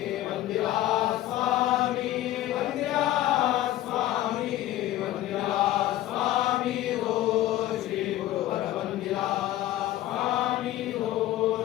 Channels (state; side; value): quieter; right; 14.5 dB